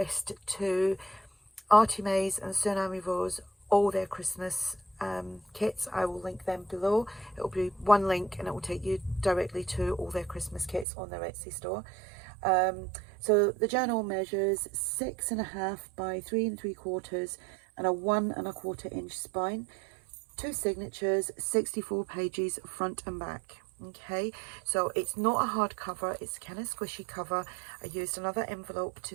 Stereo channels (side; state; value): left; drops out; at 10.9 s